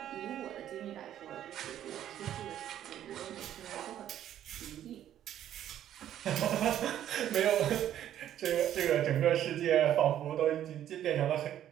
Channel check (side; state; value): left; quieter; 11.2 dB